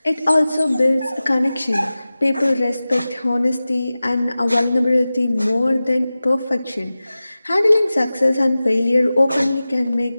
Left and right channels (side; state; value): both; inverted; correlation -0.96